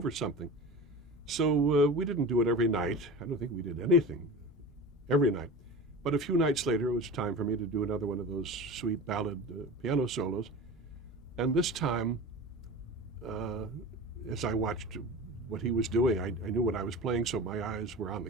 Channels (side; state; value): both; normal; correlation 0.32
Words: something. So we didn't do it every night. I don't think we did anything every night. But a few nights later, it was time for me to do another one of those sweet ballad piano solos. And this time, as I watched what he was doing, I knew what I was playing, so my eyes were on the